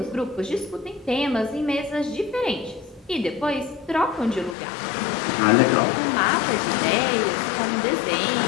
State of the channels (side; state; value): right; drops out; at 4.5 s